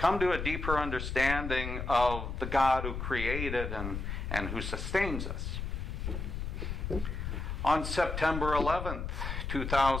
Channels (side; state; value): left; noise; rumble, 4 dB below the sound